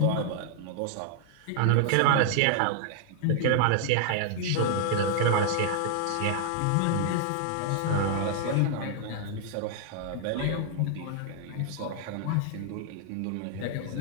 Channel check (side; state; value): both; different; correlation -0.01